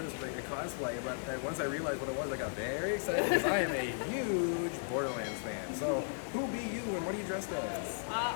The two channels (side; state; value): right; silent; digital silence